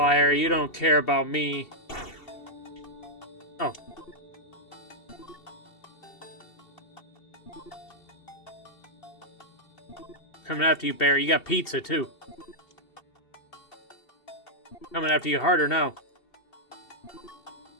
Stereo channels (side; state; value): right; late; 2.7 ms